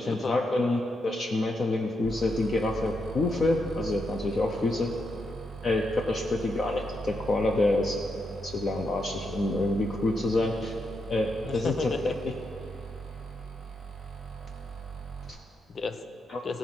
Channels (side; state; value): both; normal; correlation 0.82